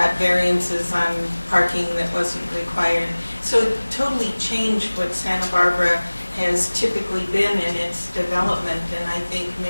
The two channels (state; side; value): inverted; both; correlation -1.00